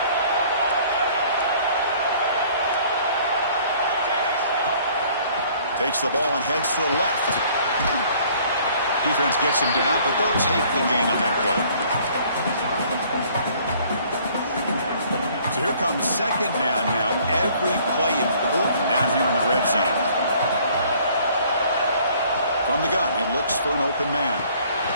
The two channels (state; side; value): inverted; both; correlation -0.57